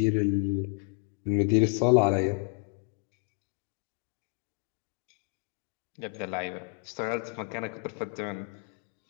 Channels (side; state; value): right; quieter; 35.6 dB